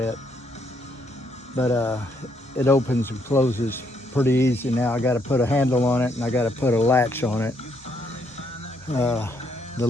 But it opens and closes pretty easy now. I got to put a handle on it, and I got to put a latch on it. The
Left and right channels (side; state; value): both; normal; correlation 0.73